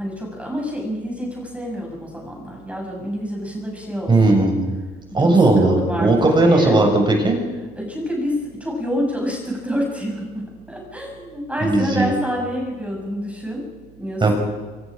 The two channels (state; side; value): noise; right; hum, 27 dB below the sound